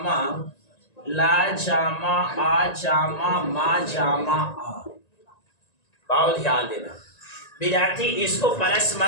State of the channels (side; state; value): right; late; 1.9 ms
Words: ला जामा आ जामा मा जामा आ। बाबू ध्यान देना विद्यार्थी, इसको प्लस